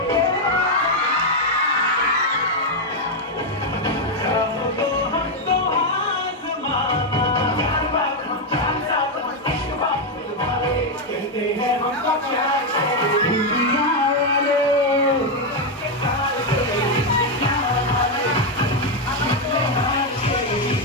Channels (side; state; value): both; normal; correlation 0.03